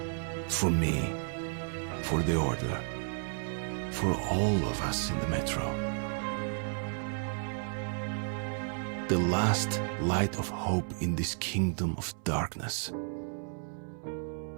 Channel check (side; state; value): left; silent; 56 dB below the other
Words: For me, for the Order, for all of us in the Metro. The last light of hope in this kingdom of darkness.